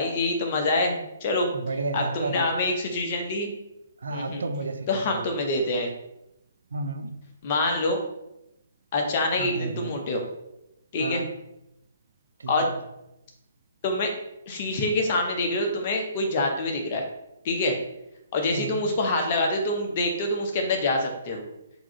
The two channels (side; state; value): both; inverted; correlation -0.52